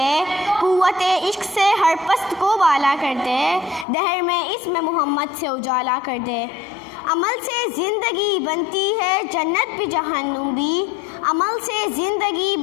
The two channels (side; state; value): right; drops out; at 3.9 s